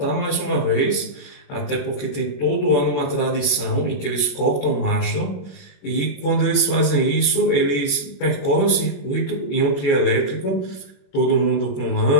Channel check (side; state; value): right; late; 21 ms